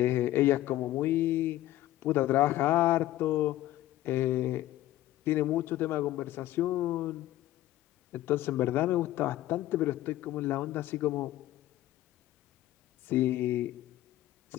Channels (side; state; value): right; quieter; 14.8 dB